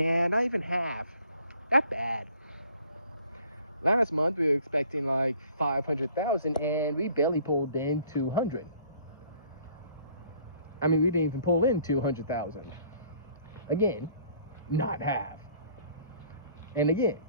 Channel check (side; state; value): both; inverted; correlation -0.58